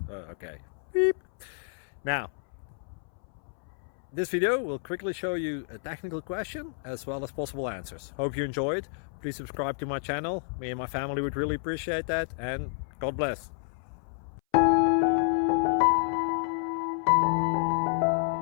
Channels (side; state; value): right; silent; 58 dB below the other